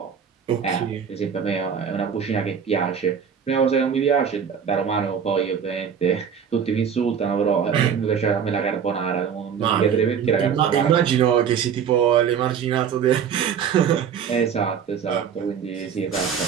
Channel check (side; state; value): left; quieter; 7.6 dB